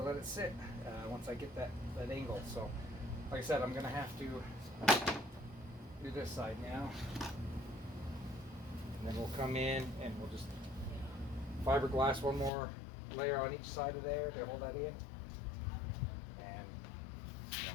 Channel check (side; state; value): right; drops out; at 12.5 s